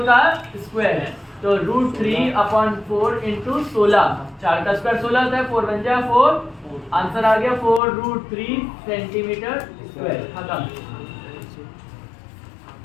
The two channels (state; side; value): drops out; right; at 7.8 s